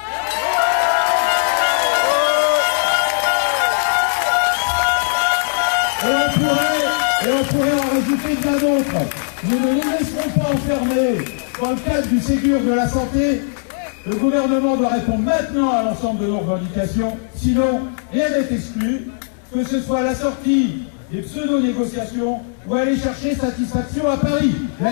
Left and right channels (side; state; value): right; silent; digital silence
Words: Et on pourrait en rajouter bien d'autres. Nous ne nous laisserons pas enfermer dans le cadre du Ségur de la santé. Le gouvernement doit répondre maintenant à l'ensemble de nos revendications, sinon rien n'est exclu, que ce soit la sortie des pseudo-négociations ou aller chercher satisfaction à Paris.